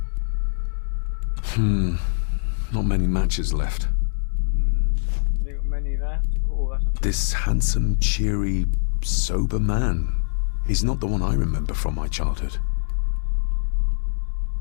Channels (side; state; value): right; silent; 63 dB below the other